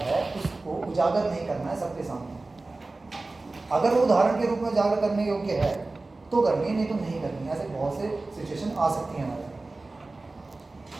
उसको उजागर नहीं करना है सबके सामने। अगर वो उदाहरण के रूप में उजागर करने योग्य है तो करनी है, नहीं तो नहीं करनी है। ऐसे बहुत से सिचुएशन आ सकती हैं हमारे।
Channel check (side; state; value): left; quieter; 3.3 dB